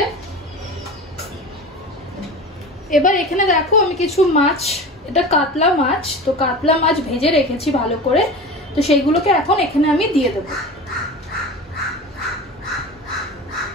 এবার এখানে দেখো আমি কিছু মাছ, এটা কাতলা মাছ, তো কাতলা মাছ ভেজে রেখেছি ভালো করে, তো সেইগুলোকে এখন এখানে আমি দিয়ে দেব।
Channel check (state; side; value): normal; both; correlation 0.33